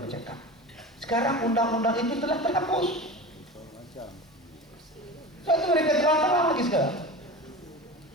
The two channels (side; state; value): both; normal; correlation 0.31